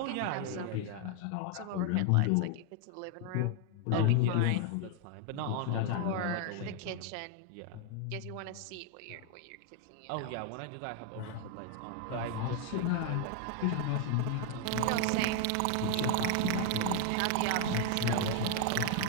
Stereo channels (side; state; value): both; different; correlation 0.00